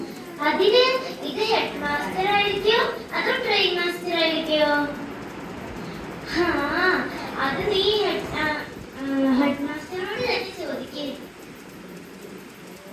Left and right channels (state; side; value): identical; both; correlation 1.00